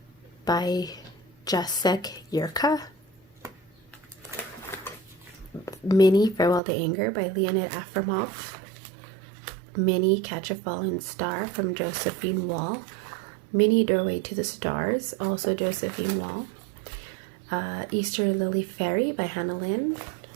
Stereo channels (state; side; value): drops out; left; at 6.6 s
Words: by Jacek Yurka. Mini Farewell to Anger by Leonid Afromov. Mini Catch a Falling Star from Josephine Wall. Mini Doorway to the Stars, also Josephine Wall. Easter Lily Fairy by Hannah Lynn.